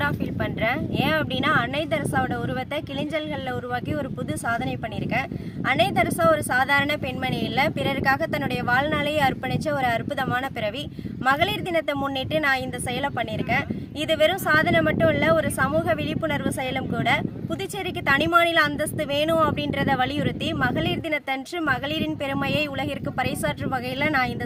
ஃபீல் பண்ணுறேன். ஏன் அப்படின்னா, அன்னை தெரசாவோட உருவத்தை கிளிஞ்சல்களில் உருவாக்கி ஒரு புது சாதனை பண்ணியிருக்கேன். அன்னை தெரசா ஒரு சாதாரண பெண்மணி இல்லை, பிறருக்காக தன்னுடைய வாழ்நாளையே அர்ப்பணித்த ஒரு அற்புதமான பிறவி. மகளிர் தினத்தை முன்னிட்டு நான் இந்த செயலை பண்ணியிருக்கேன். இது வெறும் சாதனை மட்டும் இல்லை, ஒரு சமூக விழிப்புணர்வு செயலும் கூட. புதுச்சேரிக்கு தனி மாநில அந்தஸ்து வேணும் அப்படின்றத வலியுறுத்தி மகளிர் தினத்தன்று மகளிரின் பெருமையை உலகிற்கு பறைசாற்றும் வகையில் நான்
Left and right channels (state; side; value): identical; both; correlation 1.00